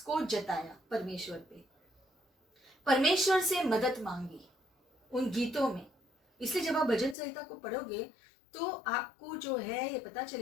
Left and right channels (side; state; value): right; drops out; at 7.2 s